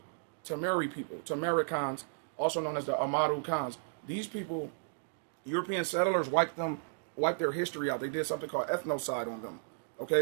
Tamari people, Tamaricans, also known as the Amaru Khans. These people, European settlers wiped their history out. They did something called ethnocide on them,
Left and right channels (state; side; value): silent; left; digital silence